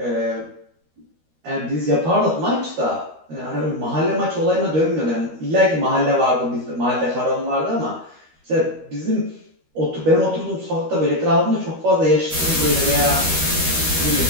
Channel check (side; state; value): left; late; 13 ms